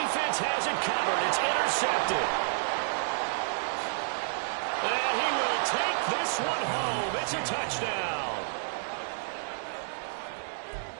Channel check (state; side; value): silent; left; 58 dB below the other